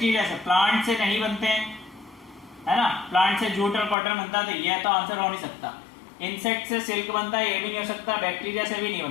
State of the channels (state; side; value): drops out; right; at 4.0 s